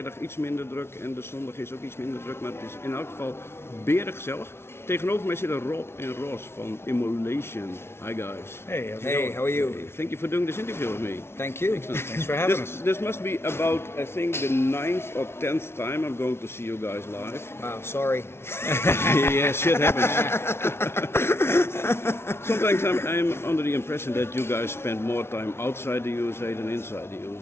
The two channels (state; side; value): late; right; 0.12 ms